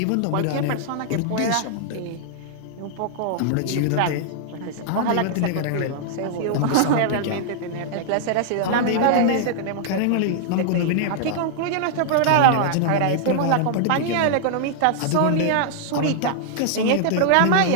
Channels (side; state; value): both; different; correlation -0.01